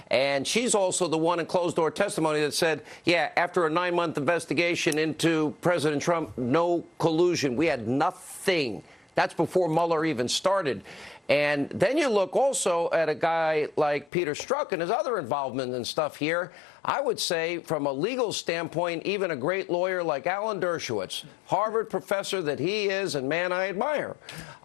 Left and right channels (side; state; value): right; drops out; at 14.1 s